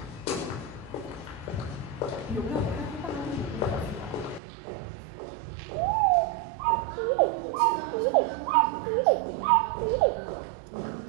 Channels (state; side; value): drops out; left; at 4.4 s